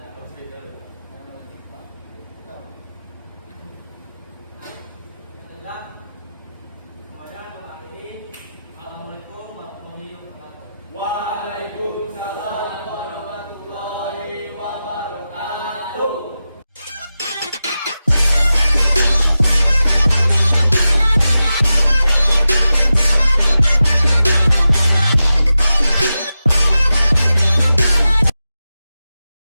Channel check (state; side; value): inverted; both; correlation -0.92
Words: Nah, semuanya mengakhiri. Assalamualaikum warahmatullahi wabarakatuh. Waalaikumsalam.